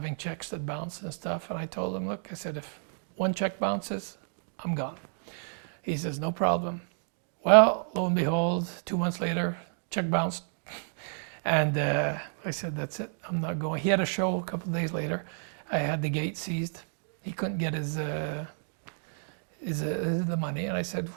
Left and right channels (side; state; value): left; silent; digital silence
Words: checks that bounced and stuff, and I told him, look, I said, if one check bounces, I'm gone. He says, no problem. Well, lo and behold, 2 months later, check bounced. And I said, that's it, I'm not going. He had a show a couple of days later. I had the gate seized. He couldn't get the money. And I said,